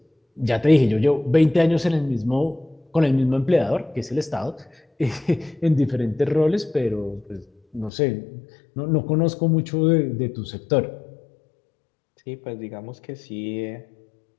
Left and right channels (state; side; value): drops out; right; at 7.9 s